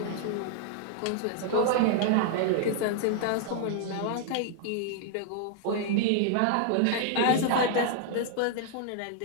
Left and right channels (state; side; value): different; both; correlation -0.01